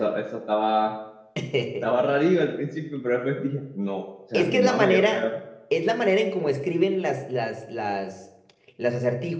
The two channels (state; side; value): identical; both; correlation 1.00